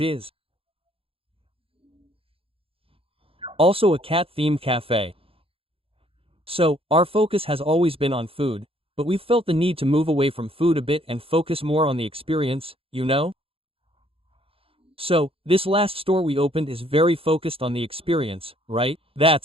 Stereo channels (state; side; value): late; left; 0.27 ms